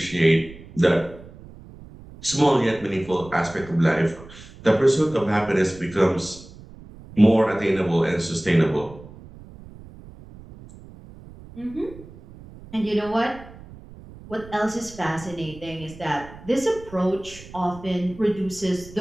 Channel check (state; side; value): noise; right; rumble, 18 dB below the sound